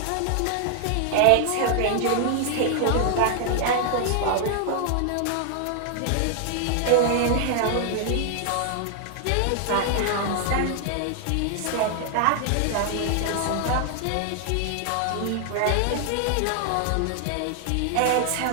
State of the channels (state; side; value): different; both; correlation 0.00